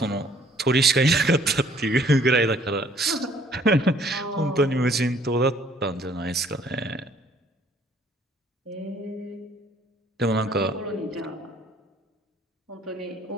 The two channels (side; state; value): both; normal; correlation 0.60